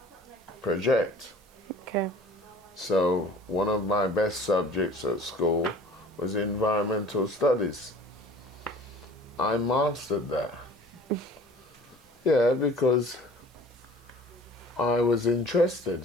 project. Okay. So one of my best subjects at school was environmental studies. I mastered that. Yeah, because I was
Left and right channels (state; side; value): normal; both; correlation 0.47